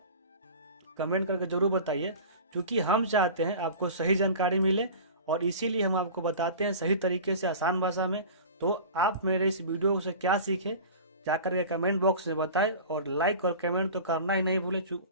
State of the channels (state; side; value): inverted; both; correlation -0.37